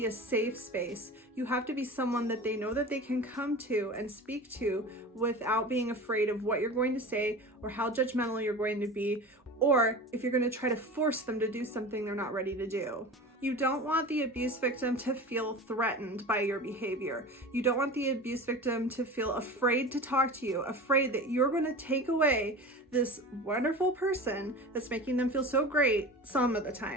a safe space. You have to be someone that they know that they can come to and speak to without being afraid of what you're going to say or how judgmental you're going to be, or if you're going to try to force them to do something they're not ready to do. You don't want the abuse victim to feel threatened by your behavior. You don't want the abuse victim to feel afraid to talk to you, afraid that you're going to take away this wonderful person that's making them feel so great some of the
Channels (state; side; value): normal; both; correlation 0.33